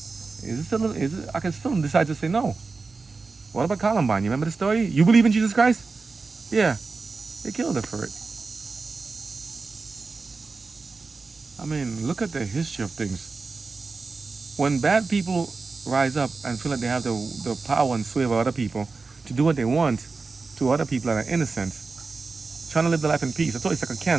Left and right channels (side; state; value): left; quieter; 4.2 dB